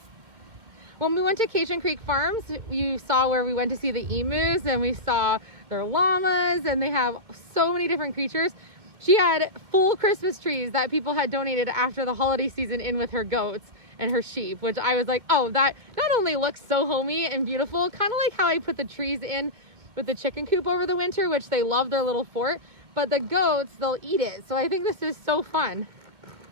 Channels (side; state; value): left; late; 2.2 ms